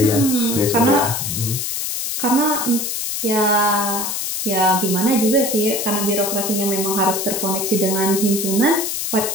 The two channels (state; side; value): noise; left; hiss, 3 dB below the sound